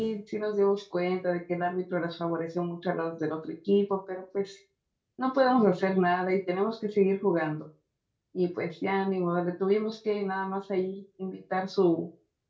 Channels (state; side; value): identical; both; correlation 1.00